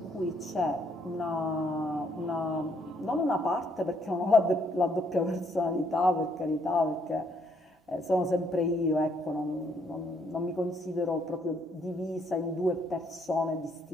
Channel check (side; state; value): both; normal; correlation 0.70